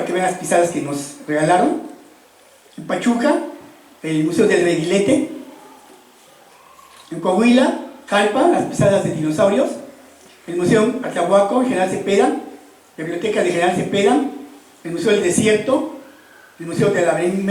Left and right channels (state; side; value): identical; both; correlation 1.00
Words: que vean las pisadas que nos regalaron. En Pachuca, el Museo del Reguilete. En Coahuila, Jalpa, las pisadas de dinosaurios. El Museo Atlahuaco, General Cepeda. La Biblioteca de General Cepeda. El Museo del Desierto. El Museo de la